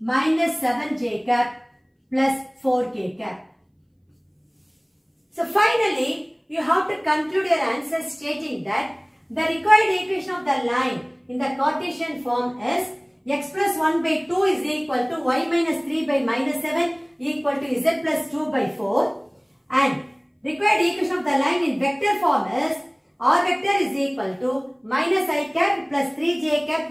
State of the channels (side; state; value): both; identical; correlation 1.00